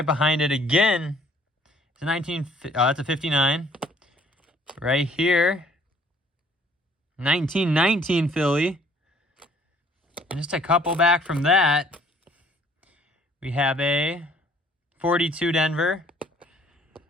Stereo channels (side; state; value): both; normal; correlation 0.59